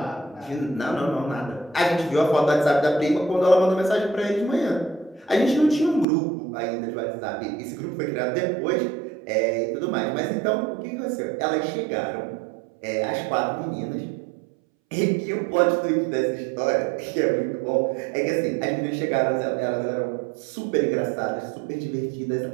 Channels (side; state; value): left; drops out; at 6.1 s